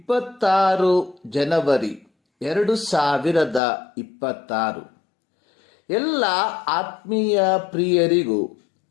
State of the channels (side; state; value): right; drops out; at 3.6 s